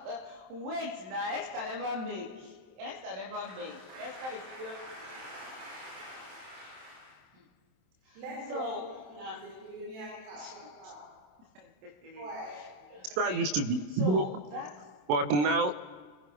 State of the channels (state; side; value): late; left; 27 ms